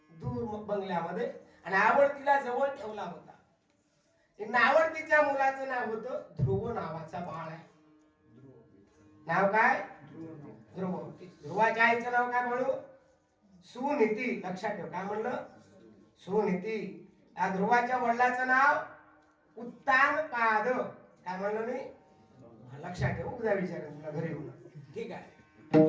दूर बंगल्यामध्ये, आणि आवडतीला जवळ ठेवला होता. नावडतीच्या मुलाचं नाव होतं ध्रुव नावाचा बाळ आहे. नाव काय? ध्रुव. ध्रुवाच्या आईचं नाव काय म्हणू? सुनीती. लक्षात ठेव, काय म्हणलं? सुनीती. या ध्रुवाच्या वडिलाचं नाव उत्तानपाद. काय म्हणलं मी? लक्षात ठेव, उद्या विचारेन तुला घरी येऊन. ठीक आहे,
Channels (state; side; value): identical; both; correlation 1.00